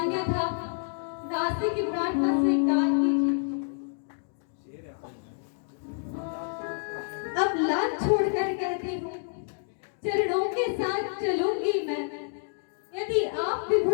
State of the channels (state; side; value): silent; right; digital silence